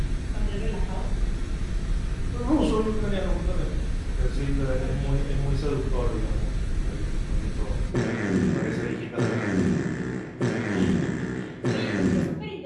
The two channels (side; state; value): both; identical; correlation 1.00